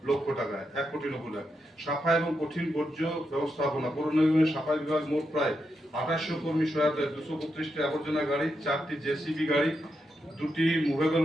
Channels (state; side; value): normal; both; correlation 0.84